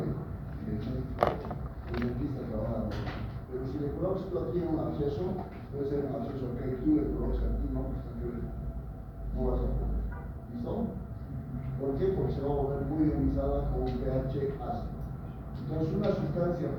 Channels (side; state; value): both; identical; correlation 1.00